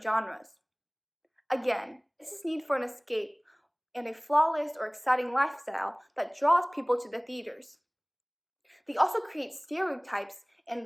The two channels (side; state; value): both; identical; correlation 1.00